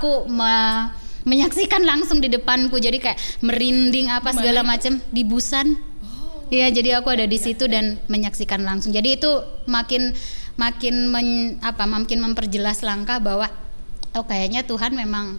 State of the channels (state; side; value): inverted; both; correlation -1.00